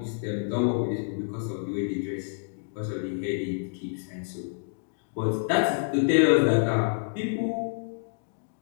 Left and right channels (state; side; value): silent; right; digital silence